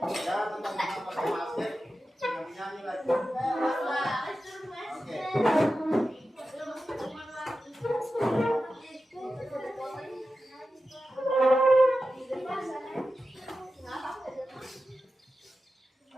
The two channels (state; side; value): normal; both; correlation 0.92